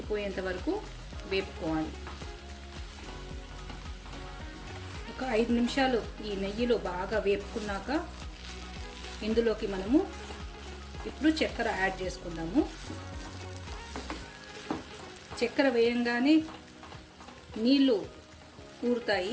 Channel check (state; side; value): identical; both; correlation 1.00